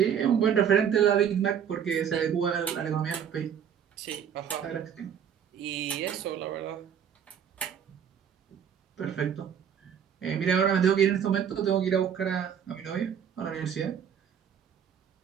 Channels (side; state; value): left; quieter; 8.3 dB